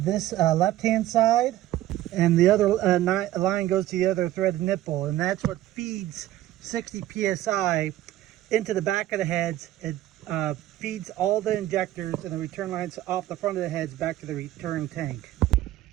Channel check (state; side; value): quieter; left; 14.4 dB